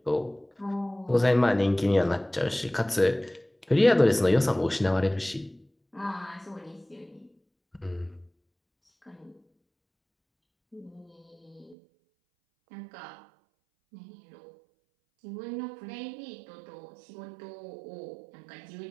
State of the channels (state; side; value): drops out; left; at 11.8 s